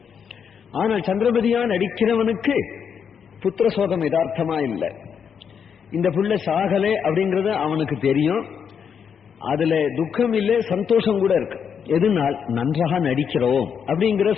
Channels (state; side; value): quieter; right; 7.2 dB